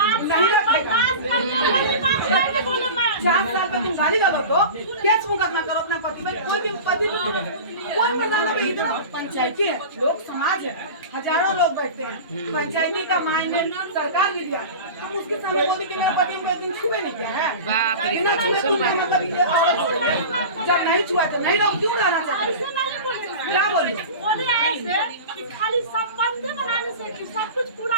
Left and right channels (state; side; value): inverted; both; correlation -0.32